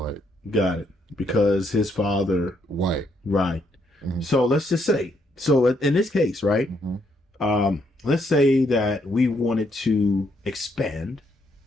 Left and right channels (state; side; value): normal; both; correlation 0.74